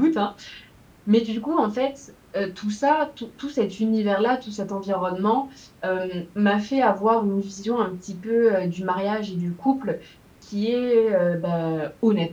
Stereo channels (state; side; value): identical; both; correlation 1.00